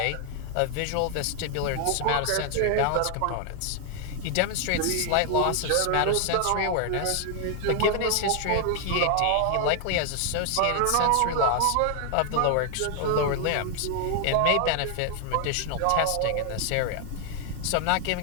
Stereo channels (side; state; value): both; different; correlation 0.00